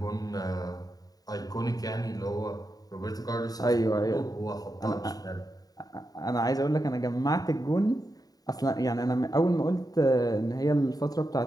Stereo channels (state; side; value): late; right; 0.18 ms